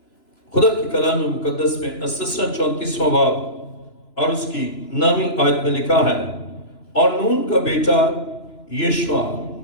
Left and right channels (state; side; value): late; right; 3.0 ms